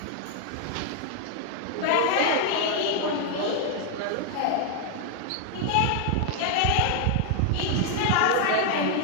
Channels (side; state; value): both; different; correlation 0.00